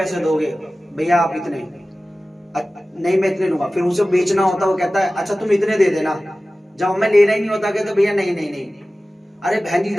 दोगे, भैया आप इतने, नहीं मैं इतने लूंगा। फिर उसे बेचना होता, वो कहता है अच्छा तुम इतने दे देना। जब हमें लेना ही नहीं होता कहते भैया नहीं नहीं नहीं, अरे बहन जी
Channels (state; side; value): normal; both; correlation 0.96